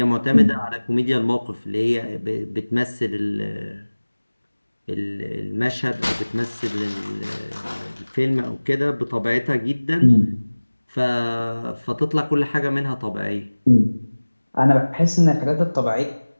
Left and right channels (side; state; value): both; inverted; correlation -1.00